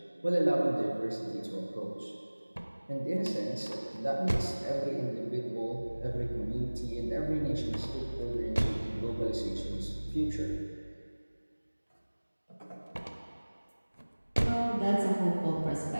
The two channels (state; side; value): inverted; both; correlation -1.00